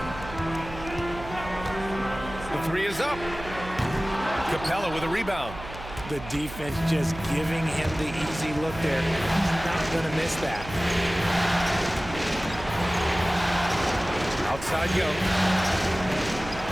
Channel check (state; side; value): noise; right; hum, 13 dB below the sound